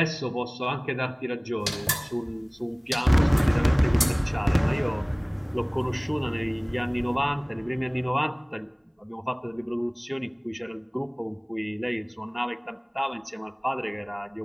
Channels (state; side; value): identical; both; correlation 1.00